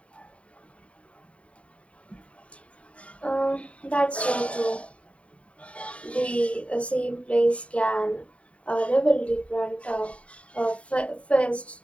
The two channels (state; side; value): late; right; 0.064 ms